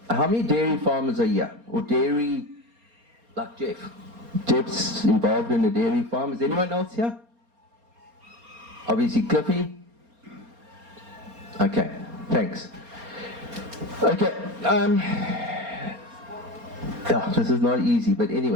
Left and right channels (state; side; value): late; left; 4.3 ms